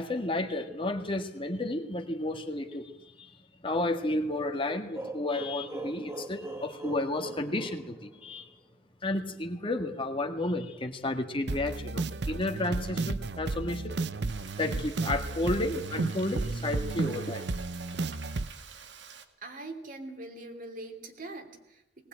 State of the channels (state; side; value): normal; both; correlation 0.55